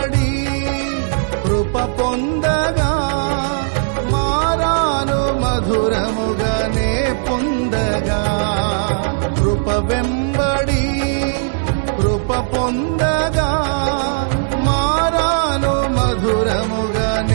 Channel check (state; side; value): silent; left; digital silence